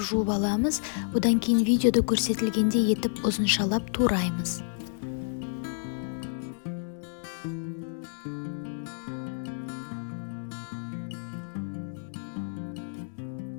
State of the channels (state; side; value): silent; right; digital silence